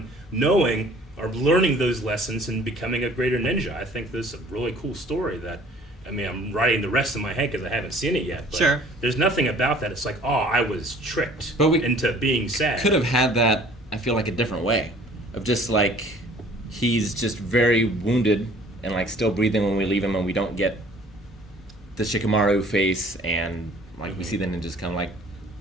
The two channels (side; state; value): both; normal; correlation 0.53